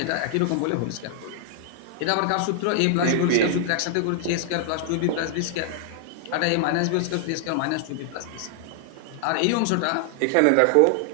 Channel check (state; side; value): different; both; correlation 0.00